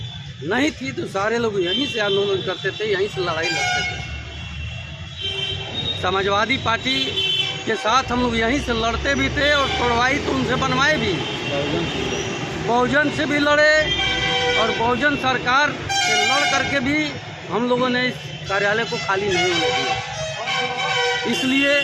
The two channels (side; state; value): both; identical; correlation 1.00